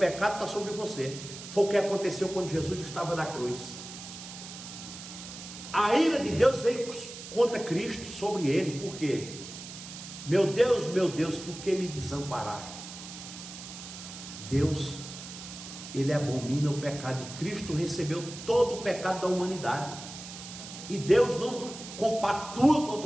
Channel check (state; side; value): noise; right; hiss, 12 dB below the sound